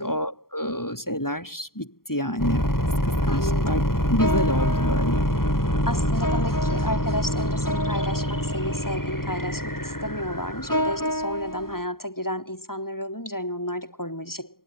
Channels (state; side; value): late; right; 0.93 ms